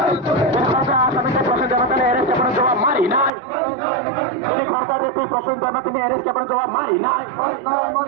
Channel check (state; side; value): drops out; left; at 3.3 s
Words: আসামিকে প্রশ্ন দেওয়া তাহলে অ্যারেস্ট আপনার জবাব মারি নাই। তিনি খরচা রেপি প্রশ্ন দেওয়া তিনি অ্যারেস্ট আপনার জবাব মারি নাই।